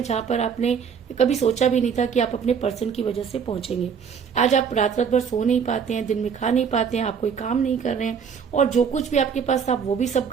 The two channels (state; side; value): quieter; left; 6.8 dB